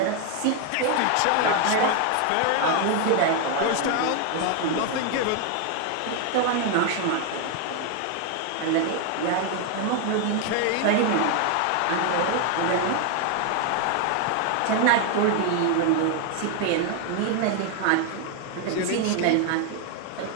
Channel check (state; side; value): different; both; correlation 0.01